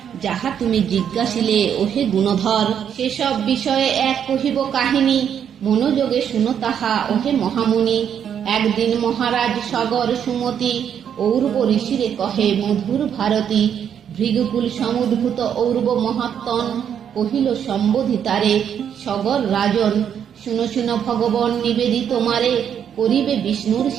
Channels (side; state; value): left; quieter; 8.6 dB